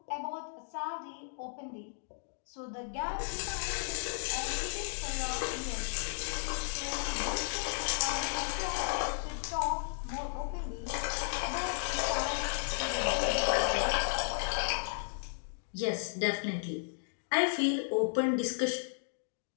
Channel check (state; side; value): silent; right; digital silence